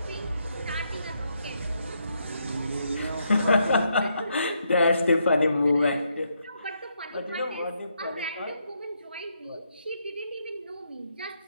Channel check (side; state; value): both; inverted; correlation -0.77